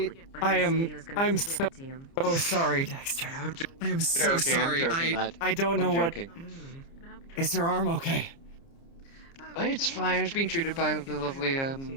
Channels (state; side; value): late; right; 30 ms